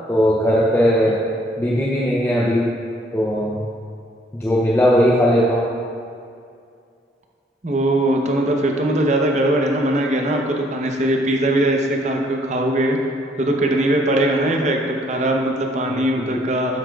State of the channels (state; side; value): normal; both; correlation 0.65